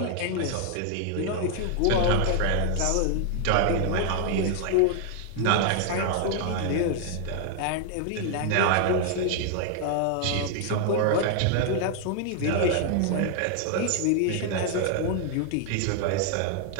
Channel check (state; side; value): different; both; correlation 0.00